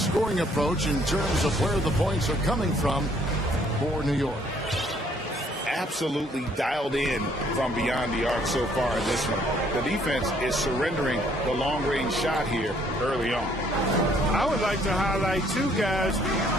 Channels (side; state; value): both; normal; correlation 0.64